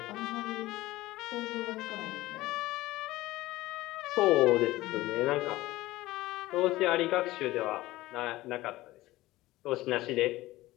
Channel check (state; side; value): quieter; right; 17.8 dB